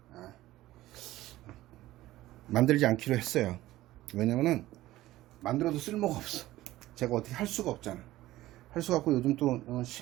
만들지 않기로 했어요. 왜냐면은 만들어도 쓸모가 없어. 제가 어떻게 할 수가 없잖아. 할 수가 없고 요즘 또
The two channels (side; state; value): left; quieter; 16.1 dB